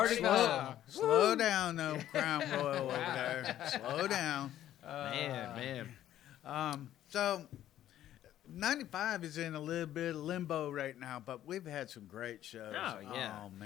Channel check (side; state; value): right; quieter; 12.2 dB